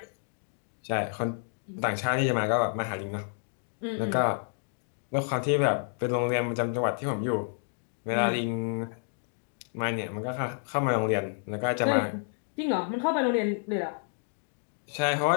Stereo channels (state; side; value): silent; right; 58 dB below the other